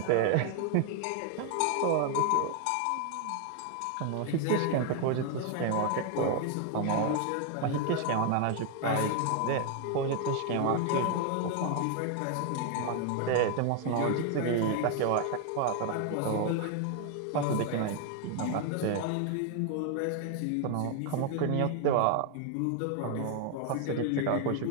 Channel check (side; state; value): both; different; correlation 0.00